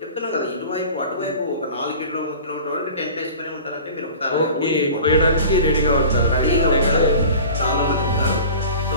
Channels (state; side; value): inverted; both; correlation -0.40